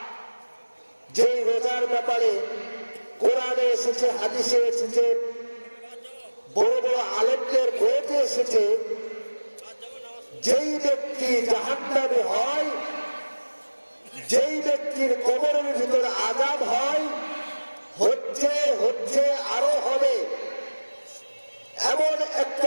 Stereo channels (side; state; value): both; inverted; correlation -1.00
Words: যেই রোজার ব্যাপারে কোরআনে এসেছে, হাদিসে এসেছে, বড় বড় আলেমদের বইতে এসেছে, যেই ব্যক্তি জাহান্নামে হয়, যেই ব্যক্তির কবরের ভিতরে আযাব হয়, হচ্ছে আরো হবে, এমন